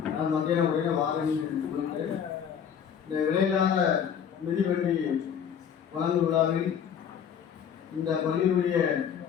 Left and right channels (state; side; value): quieter; right; 8.0 dB